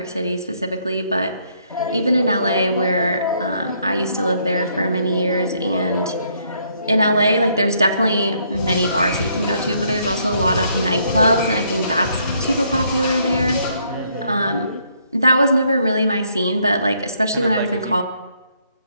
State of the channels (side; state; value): both; inverted; correlation -0.70